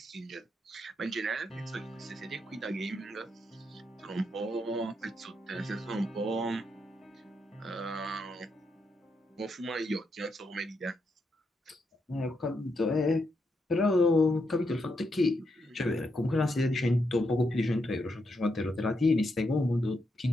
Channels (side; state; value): both; normal; correlation 0.81